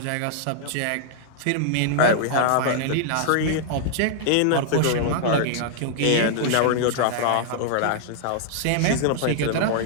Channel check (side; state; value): both; different; correlation -0.01